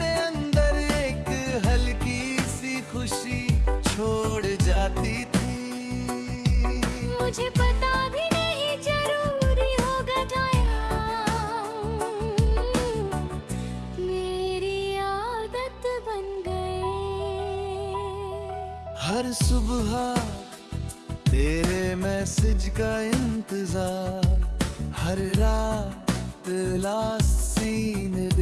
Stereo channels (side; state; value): both; identical; correlation 1.00